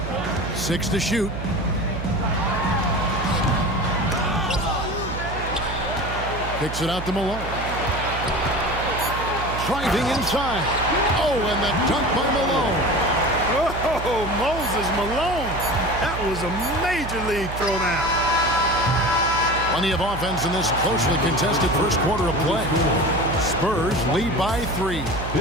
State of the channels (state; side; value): noise; right; hum, 8 dB below the sound